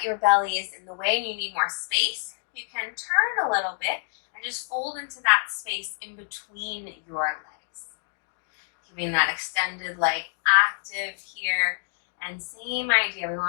your belly is in the way and you need more space, you can turn a little bit and just fold into that space in between your legs. Keeping that extended leg active here. And same idea, we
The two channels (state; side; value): silent; right; digital silence